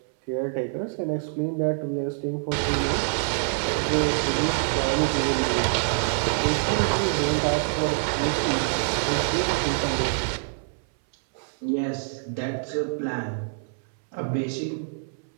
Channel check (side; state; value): left; silent; 61 dB below the other